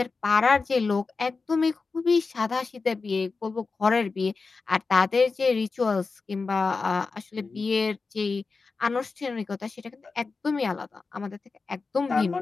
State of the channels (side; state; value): right; quieter; 4.3 dB